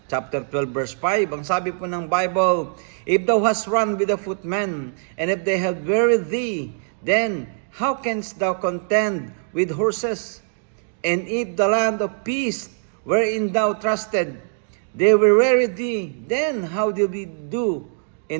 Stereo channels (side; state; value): left; silent; digital silence